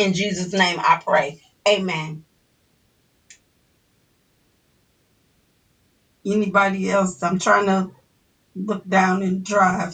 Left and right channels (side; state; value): both; identical; correlation 1.00